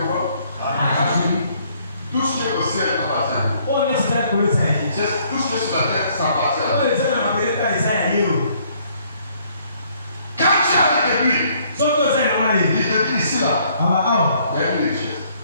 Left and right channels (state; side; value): inverted; both; correlation -0.64